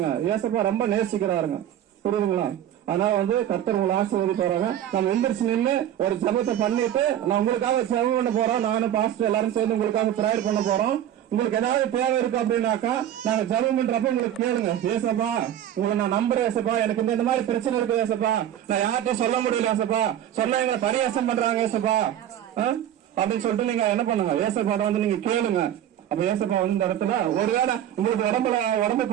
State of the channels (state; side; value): quieter; left; 11.1 dB